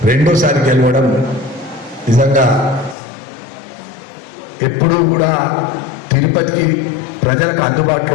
రెండోసారి గెలవడం నిజంగా ఎప్పుడూ కూడా తిరుపతికి ప్రజలకు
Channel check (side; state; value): right; drops out; at 3.0 s